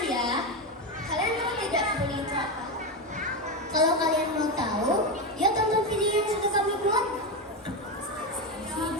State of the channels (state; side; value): normal; both; correlation 0.13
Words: Kalian tahu tidak bully itu apa? Kalau kalian mau tahu, ya tonton video yang sudah kami buat.